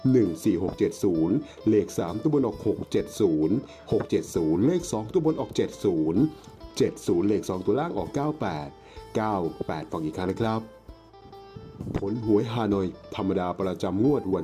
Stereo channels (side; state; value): both; identical; correlation 1.00